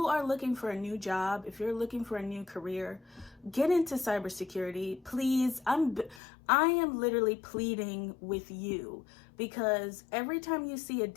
are looking for a new job, if you're looking for a new career, get into cybersecurity, please. I am literally pleading with you, because every time you see a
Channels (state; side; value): drops out; right; at 6.2 s